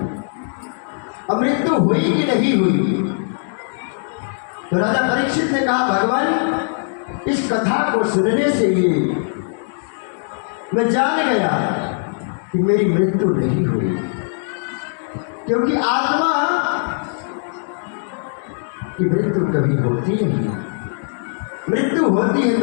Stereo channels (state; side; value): silent; right; 66 dB below the other